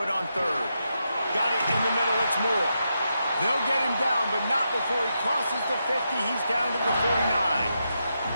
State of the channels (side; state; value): both; inverted; correlation -0.84